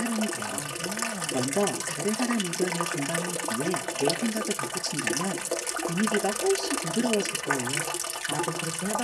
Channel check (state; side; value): identical; both; correlation 1.00